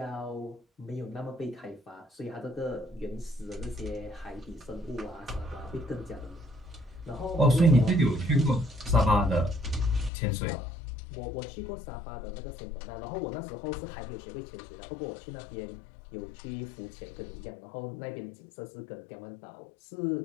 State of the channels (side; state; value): right; drops out; at 10.1 s